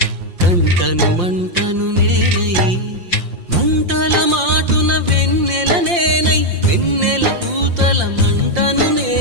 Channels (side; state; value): left; late; 5.7 ms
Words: కంటను మంటను నేనై మంటల మాటున వెన్నెల నేనై వెన్నెల పూతల మంటను